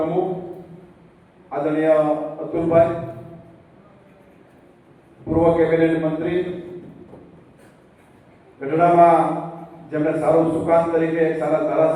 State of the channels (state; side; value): identical; both; correlation 1.00